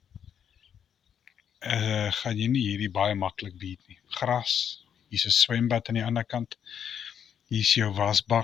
gaan jy nie hierdie baie maklik beat nie. Gras, hier is 'n swembad aan die ander kant. Hier is jou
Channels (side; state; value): right; quieter; 8.4 dB